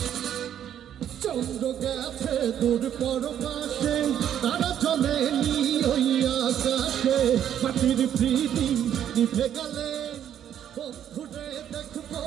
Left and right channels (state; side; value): quieter; left; 10.0 dB